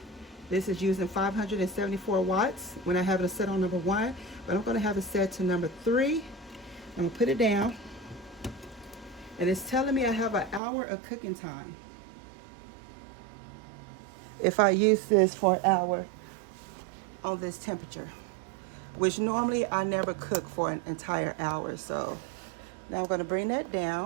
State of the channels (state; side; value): drops out; left; at 10.6 s